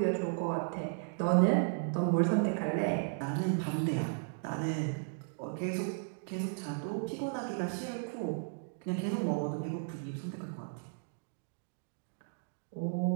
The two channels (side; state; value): left; silent; digital silence